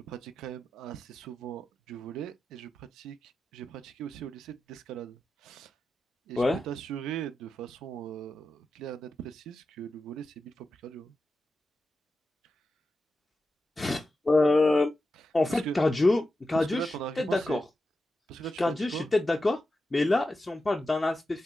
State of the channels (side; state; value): both; normal; correlation 0.91